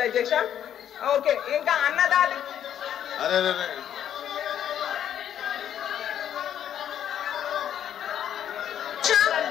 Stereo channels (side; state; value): right; quieter; 10.0 dB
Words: అధ్యక్ష. ఓకే, ఇంకా అన్నదాత